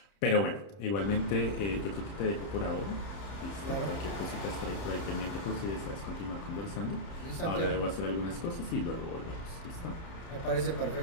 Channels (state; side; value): late; right; 31 ms